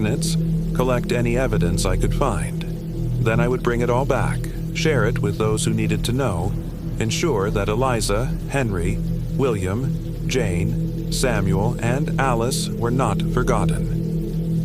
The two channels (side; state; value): both; identical; correlation 1.00